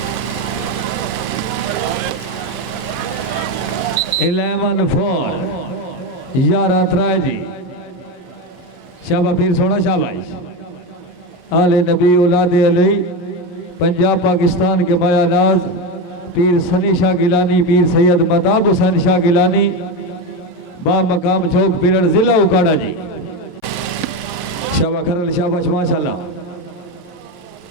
इलेवन 4 11 3 जी। शाबाश पीर सोना शाबाश। आले नबी औलाद अली पंजाब पाकिस्तान के माया नाज पीर सनी शाह गिलानी पीर सैयद मताब हुसैन शाह गिलानी बा मकाम चौक पीरड़ जिला उकाड़ा जी। शाबाश खरल शाबाश माशाल्लाह।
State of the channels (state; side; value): late; right; 11 ms